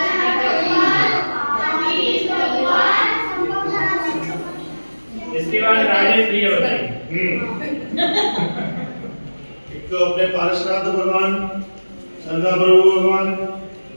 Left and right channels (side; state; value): both; inverted; correlation -1.00